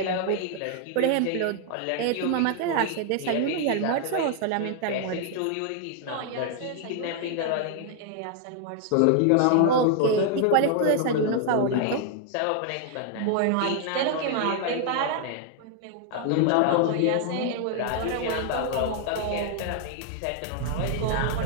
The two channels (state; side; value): different; both; correlation 0.00